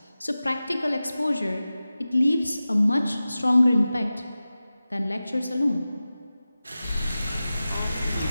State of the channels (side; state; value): both; inverted; correlation -0.95